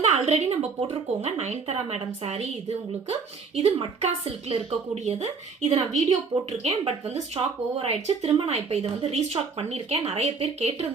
ஆல்ரெடி நம்ம போட்டிருக்கோங்க. நயன்தாரா மேடம் சாரி இது உங்களுக்கு. இது மட்கா சில்க்ல இருக்கக்கூடியது. இது நான் வீடியோ போட்டிருக்கேன். பட் வந்து ஸ்டாக் ஓவர் ஆயிடுச்சு. திரும்ப நான் இப்போ இதை வந்து ரீஸ்டாக் பண்ணியிருக்கேன். நிறைய பேர்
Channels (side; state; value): left; quieter; 5.0 dB